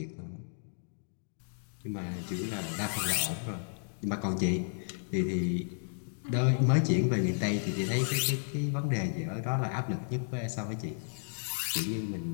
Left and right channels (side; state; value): right; silent; digital silence